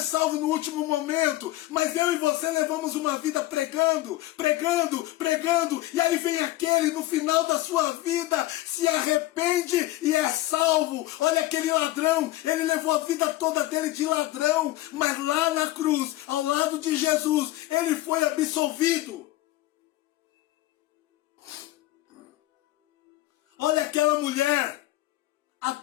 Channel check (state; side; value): quieter; right; 16.6 dB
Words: salvo no último momento, mas eu e você levamos uma vida pregando, pregando, pregando, e aí vem aquele no final da sua vida, se arrepende e é salvo. Olha aquele ladrão, ele levou a vida toda dele de ladrão, mas lá na cruz, ao lado de Jesus, ele foi absolvido. Olha aquela mulher